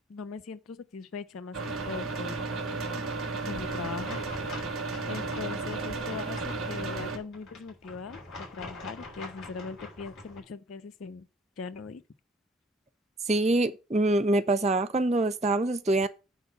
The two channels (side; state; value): both; normal; correlation 0.50